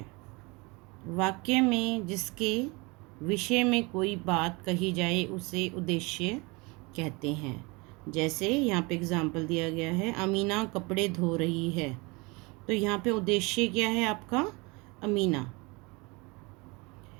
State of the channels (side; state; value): left; quieter; 26.7 dB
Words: वाक्य में जिसके विषय में कोई बात कही जाए उसे उद्देश्य कहते हैं। जैसे यहाँ पे एग्जाम्पल दिया गया है, अमीना कपड़े धो रही है, तो यहाँ पे उद्देश्य क्या है आपका, अमीना।